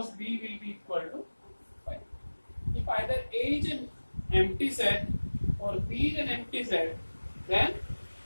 B will be equal to 5. If either A is an empty set or B is an empty set, then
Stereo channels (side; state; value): both; inverted; correlation -1.00